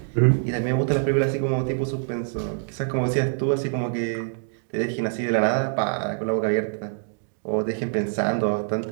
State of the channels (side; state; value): left; silent; digital silence